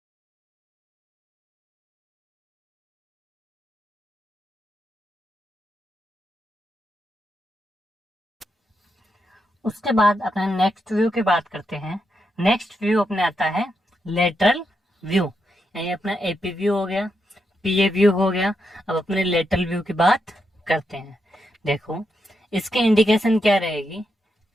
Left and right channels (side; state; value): both; normal; correlation 0.83